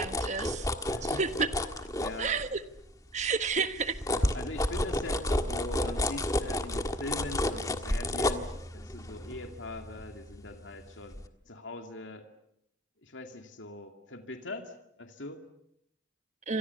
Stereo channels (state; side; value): normal; both; correlation 0.48